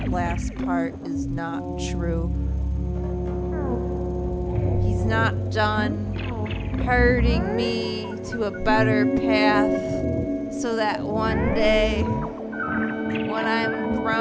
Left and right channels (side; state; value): both; identical; correlation 1.00